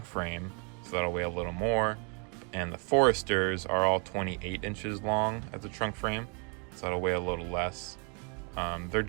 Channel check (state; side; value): quieter; left; 37.3 dB